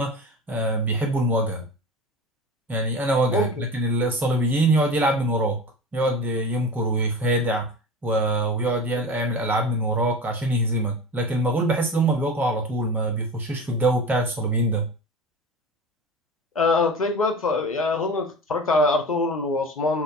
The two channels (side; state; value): both; normal; correlation 0.31